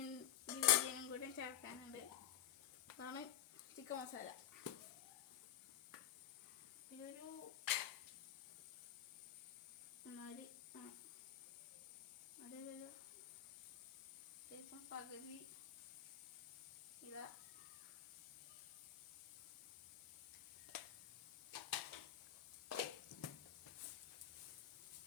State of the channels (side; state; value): right; quieter; 11.4 dB